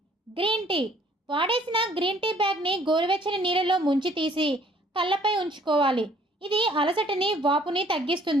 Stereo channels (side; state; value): both; normal; correlation 0.59